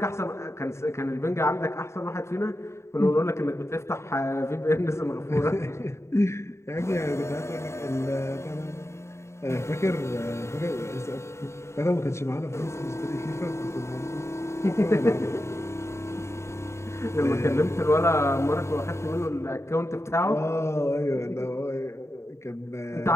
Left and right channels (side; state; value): right; late; 0.13 ms